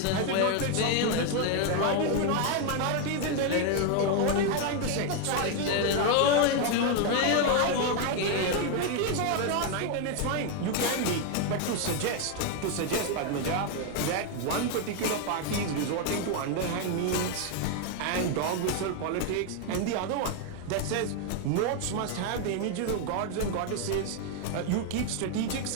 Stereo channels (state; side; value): different; both; correlation 0.01